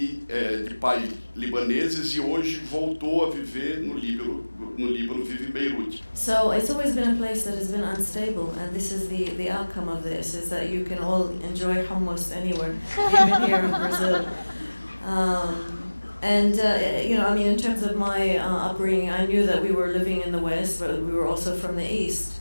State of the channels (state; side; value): inverted; both; correlation -1.00